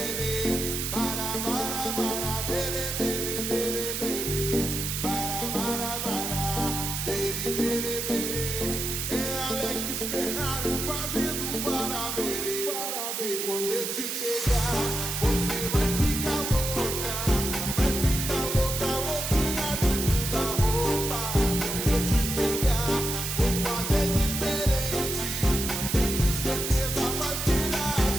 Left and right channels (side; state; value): right; noise; hiss, 3 dB below the sound